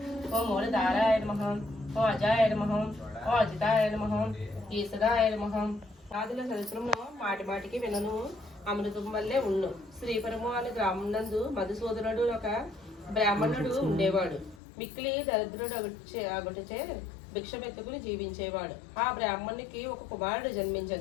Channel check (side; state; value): right; drops out; at 14.6 s